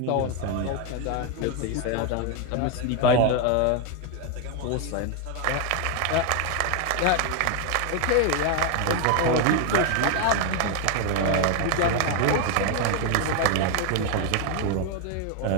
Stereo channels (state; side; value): different; both; correlation 0.01